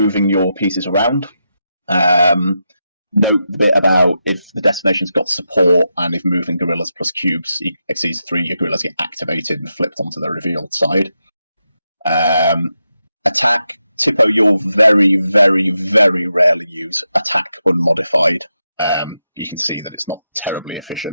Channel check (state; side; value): inverted; both; correlation -0.87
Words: your pieces around. About if the destination's got support and if moving guerrillas plus cubes exceeds 3, your guerrillas get activated and flipped onto the revealed side. Attack, Tippo, you'll very, very, very rarely use attack unmodified. You can see that it's not terribly